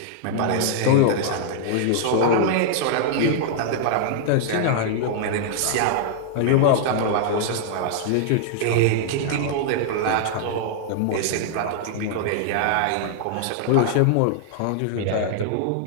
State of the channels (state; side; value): different; both; correlation -0.01